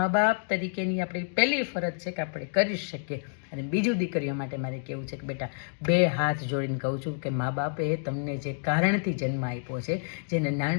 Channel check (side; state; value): right; silent; digital silence